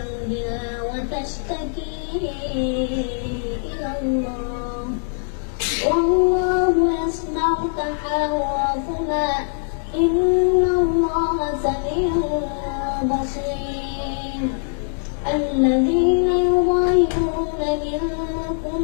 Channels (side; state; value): right; silent; digital silence